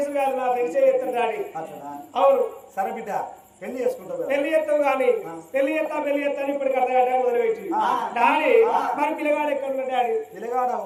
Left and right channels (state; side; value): identical; both; correlation 1.00